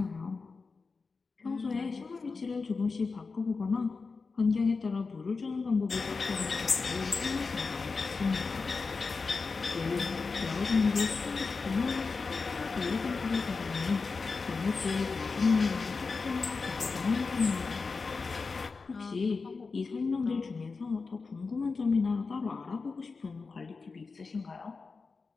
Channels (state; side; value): quieter; right; 4.4 dB